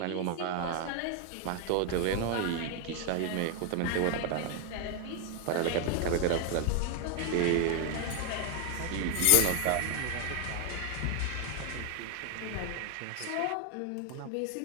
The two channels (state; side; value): different; both; correlation 0.01